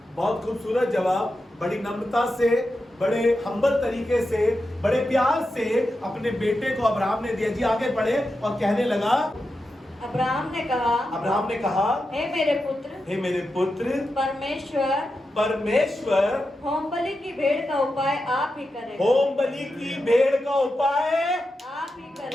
बहुत खूबसूरत जवाब। बड़ी नम्रता से, बड़े हम्बल तरीके से, बड़े प्यार से अपने बेटे को अब्राहम ने दिया। जी आगे बढ़े और कहने लगा, अब्राहम ने कहा, हे मेरे पुत्र, परमेश्वर होम बलि की भेड़ का उपाय आप ही करेगा। होम बलि की भेड़ का उपाय आप ही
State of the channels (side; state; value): both; normal; correlation 0.89